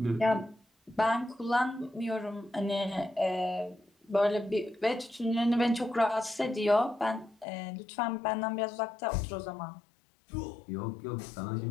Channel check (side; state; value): right; drops out; at 7.5 s